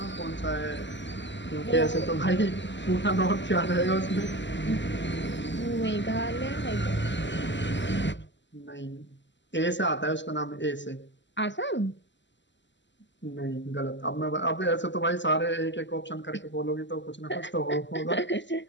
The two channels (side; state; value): right; late; 0.53 ms